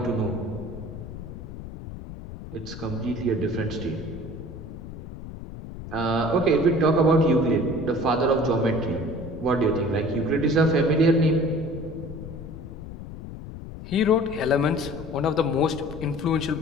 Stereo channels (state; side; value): noise; left; rumble, 11 dB below the sound